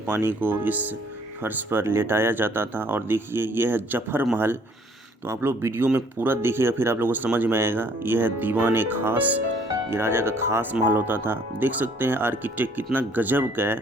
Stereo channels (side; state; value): both; normal; correlation 0.61